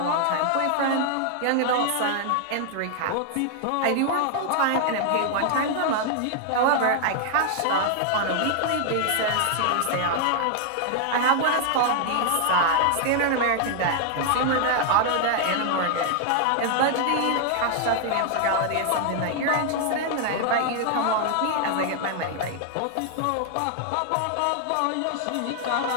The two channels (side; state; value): both; different; correlation 0.00